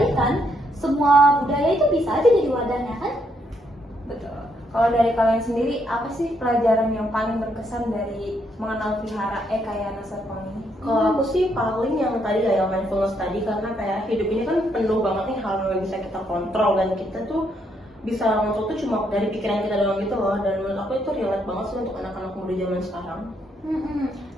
semua budaya itu bisa aja jadi wadahnya kan? Betul. Kalau dari kalian sendiri, apa sih pelajaran yang paling berkesan dari mengenal Vihara Ekayana Serpong ini? Kalau aku sih paling yang tadi ya, yang mindfulness tadi, karena kayak hidup ini kan penuh banget nih hal yang bisa kita kontrol, dan kita tuh bisa ngontrol tuh cuma dari pikiran kita doang gitu loh. Dan menurut aku itu relate banget sih untuk anak-anak muda zaman sekarang.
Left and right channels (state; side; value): normal; both; correlation 0.75